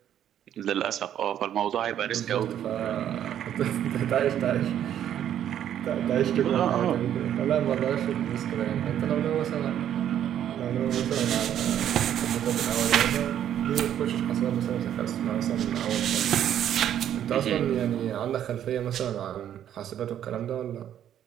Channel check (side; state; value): left; quieter; 10.4 dB